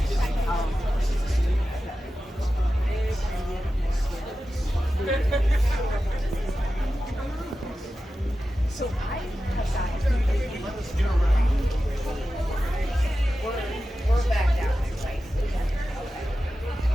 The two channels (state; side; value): normal; both; correlation 0.93